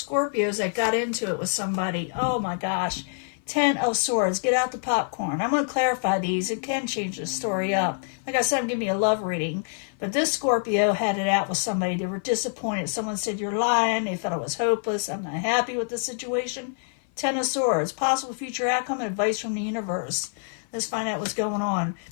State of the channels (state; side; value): silent; right; 55 dB below the other